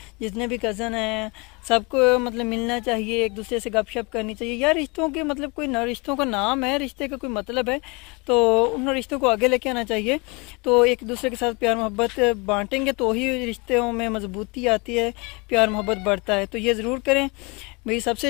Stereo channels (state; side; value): quieter; right; 29.2 dB